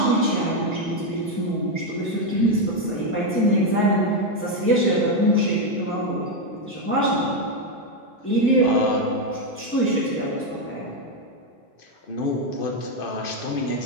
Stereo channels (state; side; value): normal; both; correlation 0.04